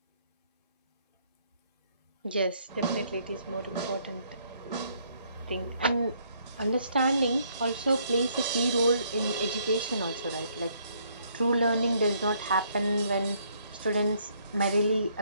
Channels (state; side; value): inverted; both; correlation -0.69